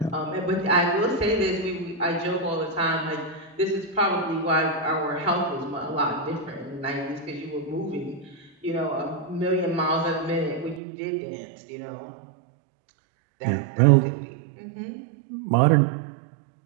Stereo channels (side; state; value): left; drops out; at 10.8 s